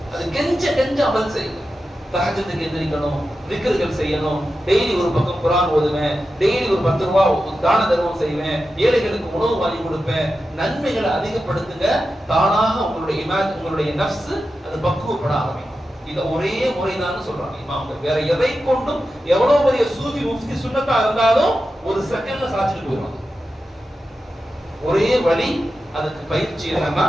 அது கெஞ்ச அமல் செய்யுங்க. தஹஜ்ஜுக்கு எந்திரிக்கணும், திக்ர்கள் செய்யணும், டெய்லி ஒரு பக்கம் குர்ஆன் ஓதுவேன், டெய்லி ஒரு 10 ரூபாய் தான தர்மம் செய்வேன், ஏழைகளுக்கு உணவு வாங்கி கொடுப்பேன். நன்மைகளை அதிகப்படுத்துங்க. தானாக உங்களுடைய நஃப்ஸ் அது பக்குவப்பட ஆரம்பிக்கும். இது ஒரே முறைதான் சொல்றாங்க இமாம்கள். வேற எதை கொண்டும் எவ்வளவு பெரிய சூஃபி முஃப்தி சுன்னத்தா இருந்தாலும் ஒரு செகண்ட்ல சாச்சிட்டு போயிடும். ஒரே வழி, அதுக்கு பயிற்சி என்னன்னா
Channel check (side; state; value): both; normal; correlation 0.91